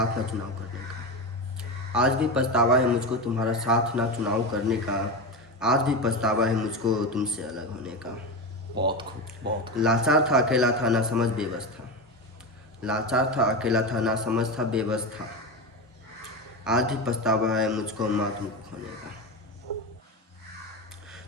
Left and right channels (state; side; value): normal; both; correlation 0.20